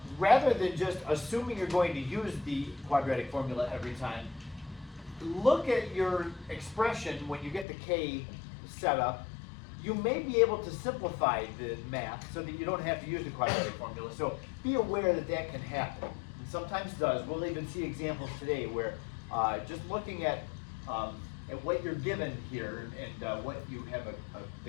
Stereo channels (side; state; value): right; drops out; at 7.7 s